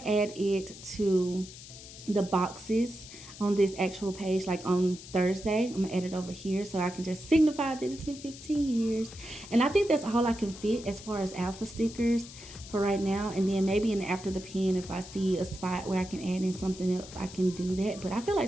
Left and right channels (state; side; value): noise; left; hiss, 16 dB below the sound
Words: to add it to the boxes on this actual page, like on Thursday. I'm gonna add it over here so I can just signify that it's been 15 years. And I think that's all I can fit as far as alpha stickers for right now. And then maybe in after the pen, if I see a spot where I can add in something else, I can do that. But I feel